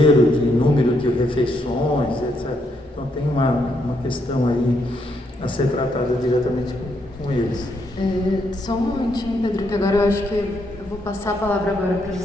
de número de refeições, etc. Então tem uma questão aí a ser tratada diretamente com eles. Só um momentinho, Pedro, que agora eu acho que eu vou passar a palavra agora para os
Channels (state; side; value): normal; both; correlation 0.76